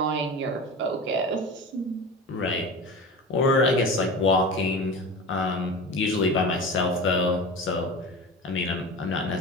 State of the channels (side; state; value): both; normal; correlation 0.31